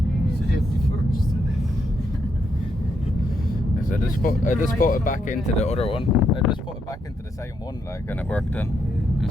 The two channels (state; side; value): normal; both; correlation 0.78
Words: Safety first. So I just put it back into the other one. I just put it back into the same one, like, and it worked then.